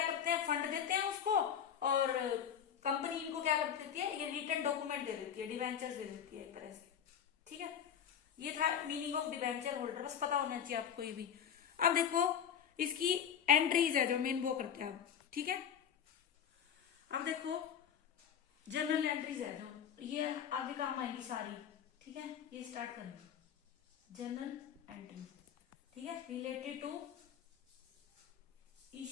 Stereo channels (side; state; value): right; quieter; 8.5 dB